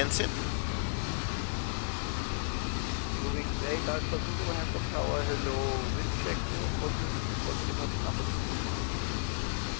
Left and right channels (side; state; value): right; silent; digital silence